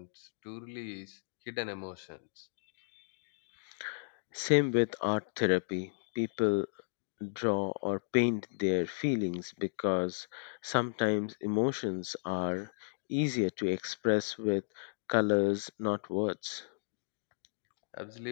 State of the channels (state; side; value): silent; right; digital silence